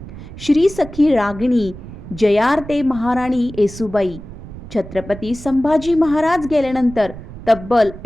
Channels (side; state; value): right; noise; rumble, 14 dB below the sound